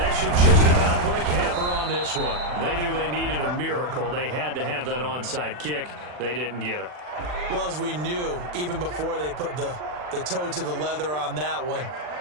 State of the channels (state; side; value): late; left; 40 ms